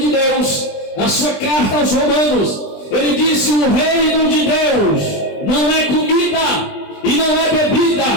Deus, na sua carta aos Romanos. Ele disse: o reino de Deus não é comida e não é bebida,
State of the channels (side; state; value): right; late; 20 ms